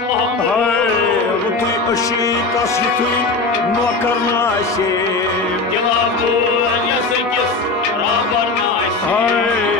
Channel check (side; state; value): right; quieter; 3.7 dB